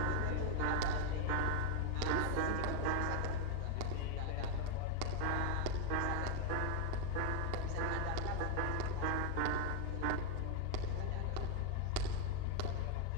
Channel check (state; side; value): different; both; correlation 0.01